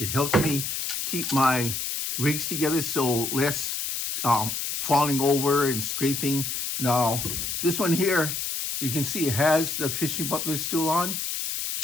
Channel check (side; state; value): left; noise; hiss, 3 dB below the sound